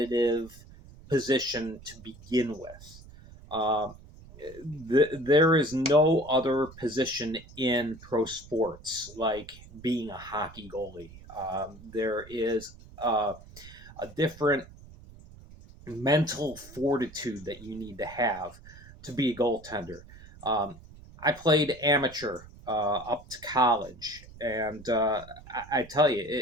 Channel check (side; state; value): right; noise; rumble, 19 dB below the sound